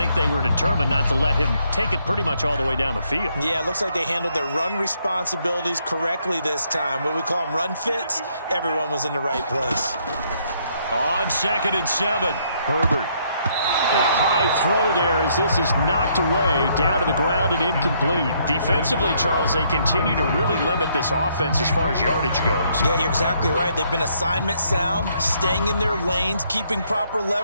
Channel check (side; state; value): both; inverted; correlation -0.71